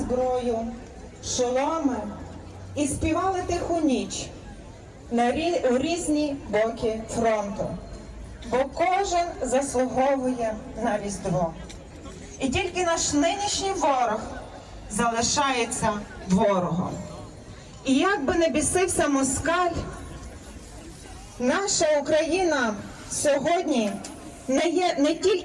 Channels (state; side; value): identical; both; correlation 1.00